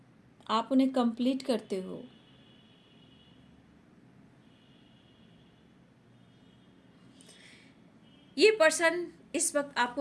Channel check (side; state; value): both; identical; correlation 1.00